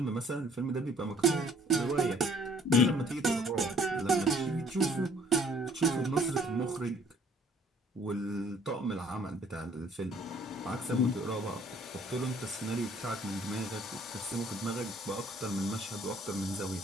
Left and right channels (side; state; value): both; normal; correlation 0.58